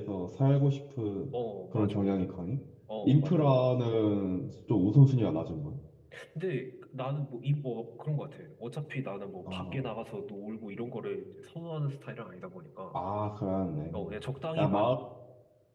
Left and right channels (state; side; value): identical; both; correlation 1.00